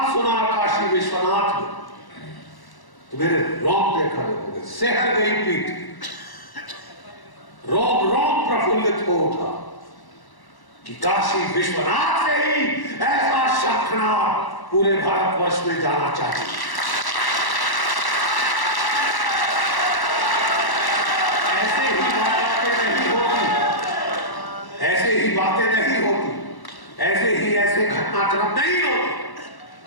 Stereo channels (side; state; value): right; late; 1.1 ms